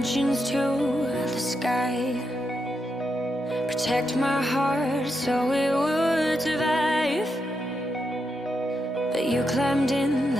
to the sky. Protect my heart so it would survive. But you climbed in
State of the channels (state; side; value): normal; both; correlation 0.84